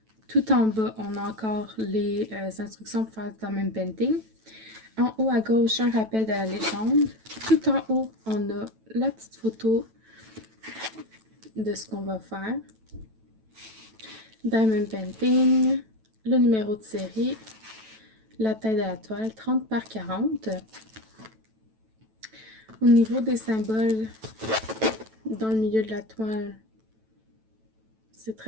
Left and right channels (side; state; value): left; late; 9.1 ms